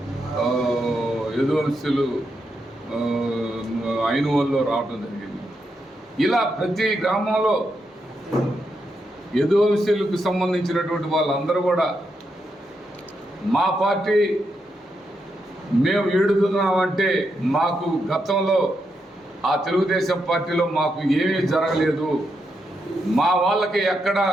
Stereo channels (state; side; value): normal; both; correlation 0.83